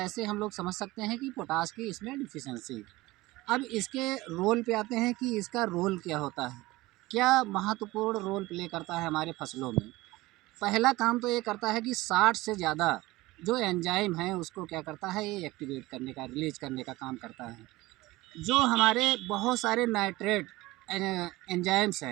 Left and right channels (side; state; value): left; quieter; 19.7 dB